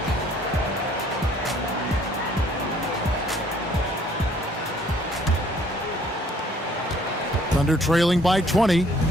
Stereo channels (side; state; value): both; normal; correlation 0.60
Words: Thunder trailing by 20.